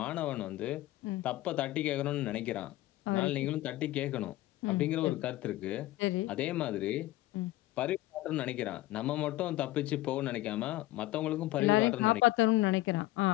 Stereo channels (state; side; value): quieter; right; 16.9 dB